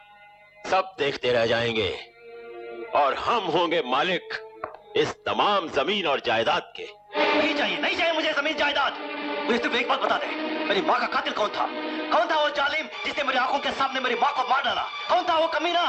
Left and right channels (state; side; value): identical; both; correlation 1.00